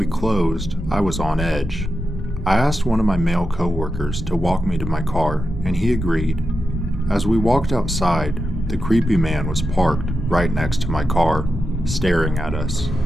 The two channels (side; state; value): both; normal; correlation 0.89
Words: closed, I was on edge. I asked one of my male coworkers to walk me to my car, and he agreed. As we walked outside, the creepy man was parked right next to my car, staring at us.